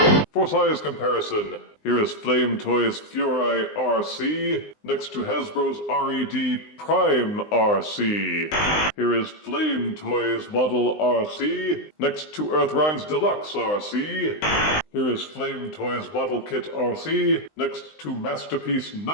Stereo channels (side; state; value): right; late; 19 ms